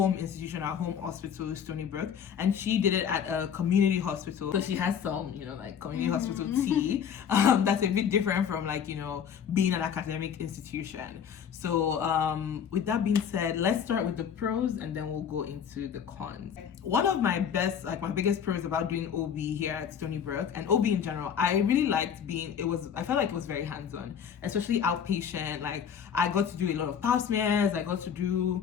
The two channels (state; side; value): quieter; right; 8.0 dB